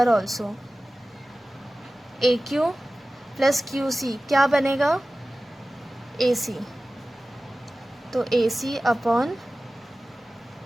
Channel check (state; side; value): normal; both; correlation 0.96